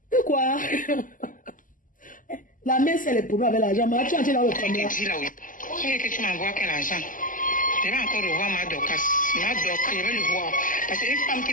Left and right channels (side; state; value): right; late; 0.38 ms